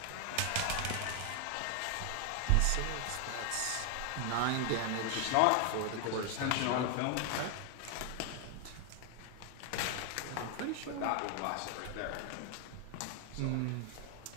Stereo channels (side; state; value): both; different; correlation 0.00